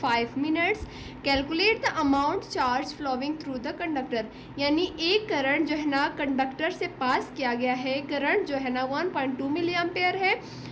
5 minutes. Calculate the amount charge flowing through the conductor. यानी एक करंट जो है ना कंडक्टर से पास किया गया है, करंट जो है ना 1.2 मिली एम्पियर है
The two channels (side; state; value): both; identical; correlation 1.00